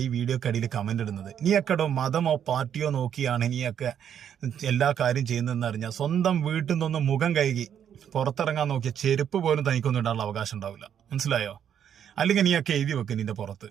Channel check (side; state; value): left; quieter; 9.1 dB